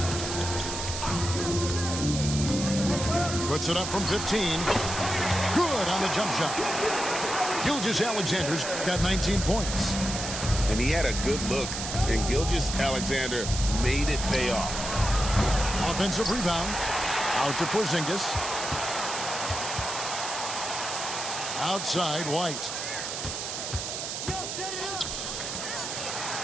Puts it up from 15. Good on the jump shot. Gilgeous-Alexander's got 19 points. And he had a good look, and Gilgeous-Alexander made it pay off. Offensive rebound. Out to Porzingis. Outside, White.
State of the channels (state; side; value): noise; right; hiss, 5 dB below the sound